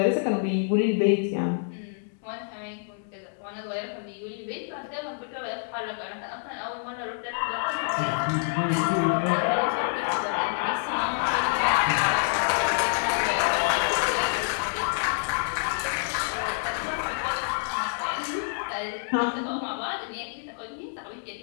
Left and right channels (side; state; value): right; silent; digital silence